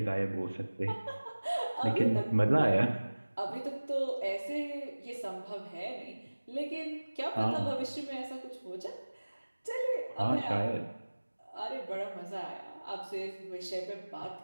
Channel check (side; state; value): both; inverted; correlation -1.00